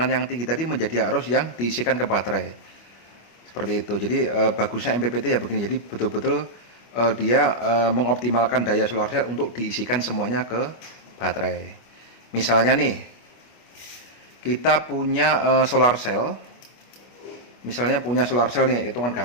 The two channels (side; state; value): right; late; 25 ms